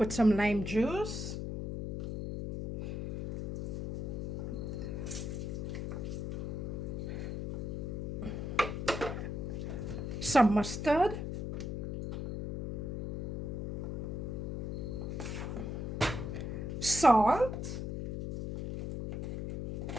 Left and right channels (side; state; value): left; noise; hum, 4 dB below the sound